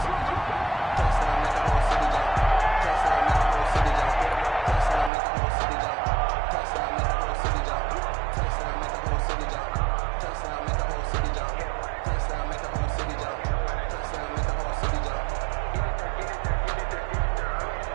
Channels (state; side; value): drops out; left; at 5.1 s